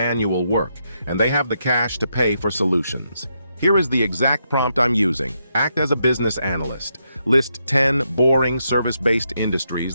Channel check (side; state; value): both; inverted; correlation -0.81